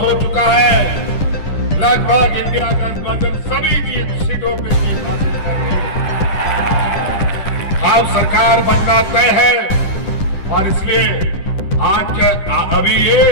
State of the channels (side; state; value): right; late; 10 ms